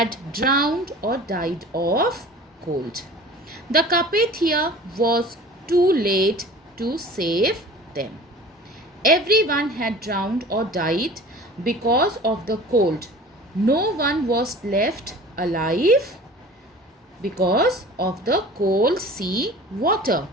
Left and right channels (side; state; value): both; normal; correlation 0.42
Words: drowned or died of cold. The Carpathia was too late to save them. Everyone had drowned or died because of the cold. No one was left alive because of the cold sea water.